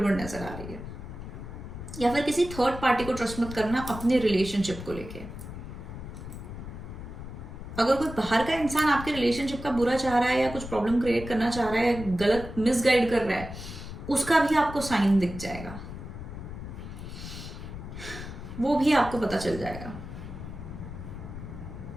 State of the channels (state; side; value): noise; left; rumble, 10 dB below the sound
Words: नजर आ रही है। या फिर किसी थर्ड पार्टी को ट्रस्ट मत करना अपने रिलेशनशिप को लेके। अगर कोई बाहर का इंसान आपके रिलेशनशिप का बुरा चाह रहा है, या कुछ प्रॉब्लम क्रिएट करना चाह रहा है, गलत मिसगाइड कर रहा है, उसका भी आपको साइन दिख जाएगा, वो भी आपको पता चल जाएगा।